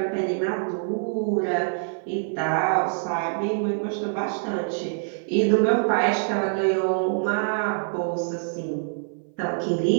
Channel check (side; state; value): left; silent; 57 dB below the other